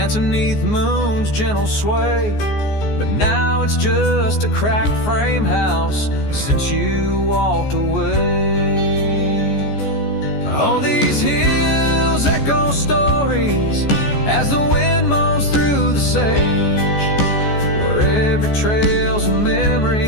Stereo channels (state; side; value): late; right; 14 ms